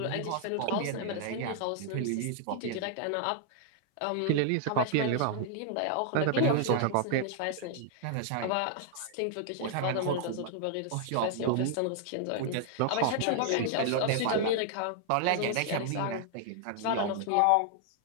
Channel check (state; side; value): different; both; correlation 0.00